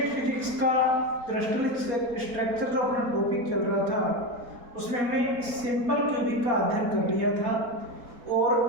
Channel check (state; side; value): late; left; 4.3 ms